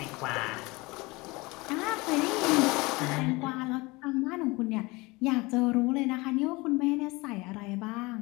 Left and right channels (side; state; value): right; quieter; 23.7 dB